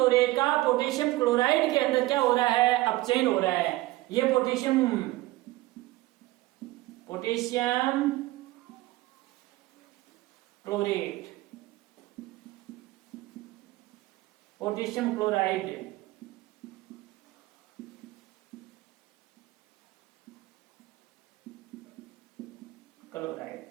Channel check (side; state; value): left; quieter; 18.4 dB